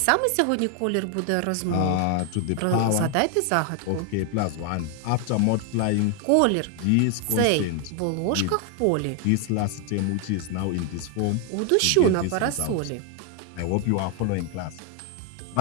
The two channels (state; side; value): different; both; correlation 0.01